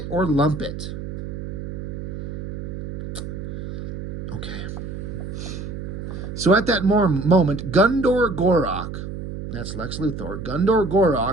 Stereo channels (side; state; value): right; noise; hum, 7 dB below the sound